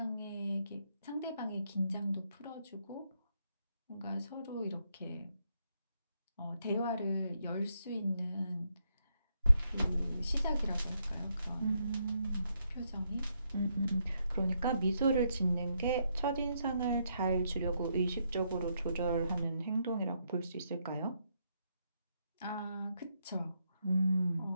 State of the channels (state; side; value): inverted; both; correlation -0.77